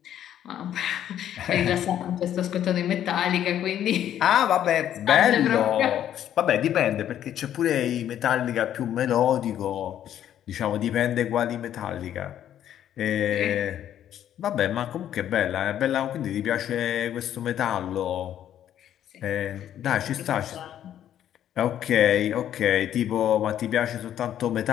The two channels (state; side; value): quieter; right; 10.8 dB